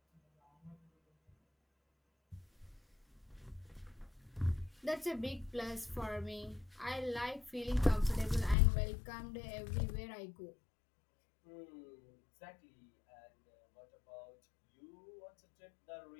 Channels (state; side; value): drops out; right; at 8.6 s